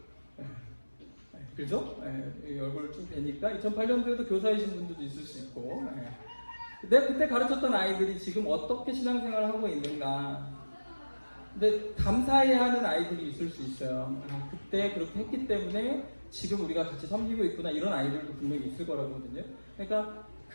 그죠? 얼굴 쭉 되니까 2008년도에도 교사이신 분들도 있을 수 있고. 내가 그때 가르쳤던 아이들이 지금 어떻게 신앙생활을 하고 있는가. 근데 감사해야 하는 아이들이 있을 수 있어요. 그때 그렇게 했기 때문에 지금 우리가 같이 섬기고 있구나. 이런 아이들도 분명히 있을 거라거든요. 그러니까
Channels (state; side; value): inverted; both; correlation -1.00